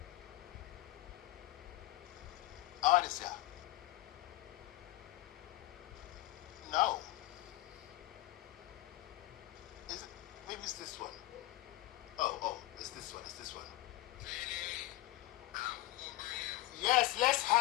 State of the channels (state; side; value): quieter; right; 17.8 dB